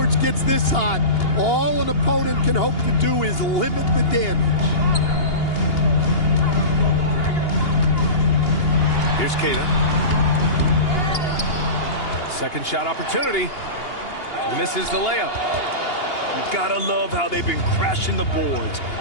gets this hot, all an opponent can hope to do is limit the damage. Here's Keita. Second shot opportunity. Misses the layup. You gotta love how they've been crashing the boards,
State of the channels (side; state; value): right; late; 2.8 ms